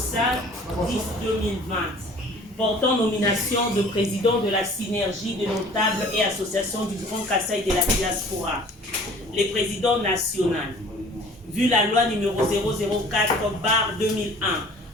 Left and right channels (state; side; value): normal; both; correlation 0.49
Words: 10 2020. Portant nomination de président de la synergie des notables et associations du Grand Kassai de la diaspora. Les présidents nationaux. Vu la loi numéro 004/2001